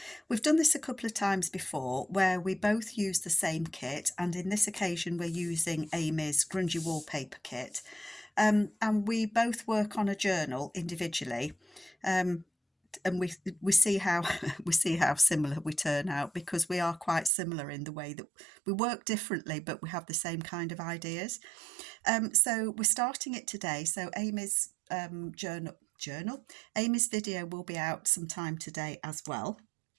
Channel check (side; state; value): left; drops out; at 17.3 s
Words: We've done this a couple of times before where we both use the same kit, and in this occasion we're using Amy's Grungy Wallpaper kit. And we both work on a journal individually. And we see how we see how similar we turn out, because we are quite similar in the way that we work differently, but we have the same kind of ideas. So we're starting it today. So Amy's journal, Amy's video will be out sometime today as well.